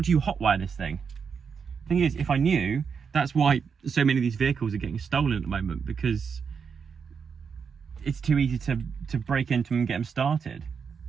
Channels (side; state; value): left; quieter; 6.2 dB